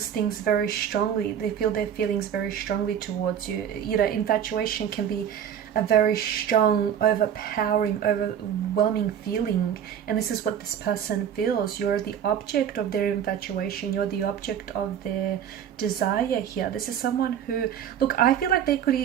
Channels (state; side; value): quieter; left; 9.1 dB